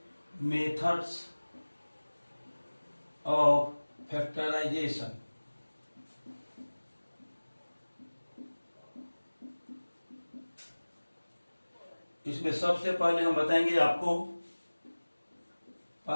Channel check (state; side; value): inverted; both; correlation -1.00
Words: मेथड्स ऑफ फैक्टराइजेशन, इसमें सबसे पहले हम बताएंगे आपको